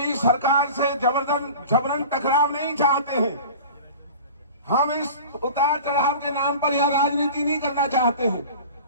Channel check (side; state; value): both; inverted; correlation -0.39